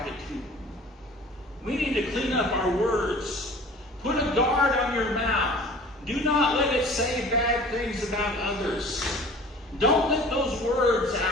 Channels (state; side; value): normal; both; correlation 0.45